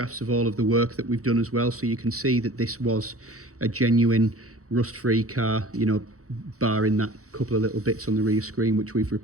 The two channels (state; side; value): late; left; 0.65 ms